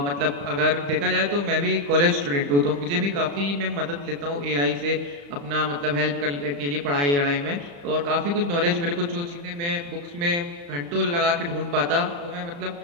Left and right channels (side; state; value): left; late; 35 ms